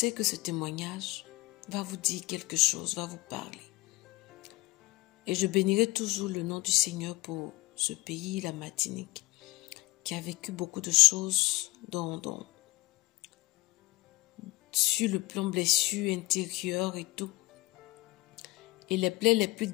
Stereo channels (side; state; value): right; quieter; 21.1 dB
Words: que ce témoignage va vous dire quelque chose, va vous parler. Et je bénirai toujours le nom du Seigneur pour ce pays, la Martinique, qui a vécu beaucoup de choses sur le plan blessure intérieure et tout. Et les plaies les plus